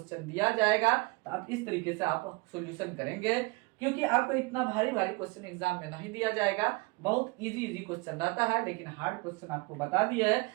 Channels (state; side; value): quieter; left; 26.0 dB